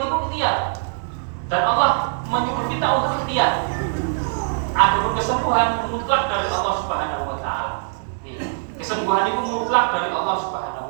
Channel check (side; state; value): left; silent; digital silence